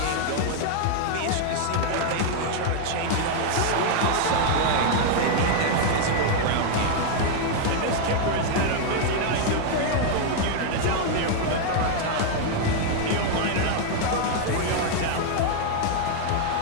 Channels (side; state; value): both; different; correlation 0.00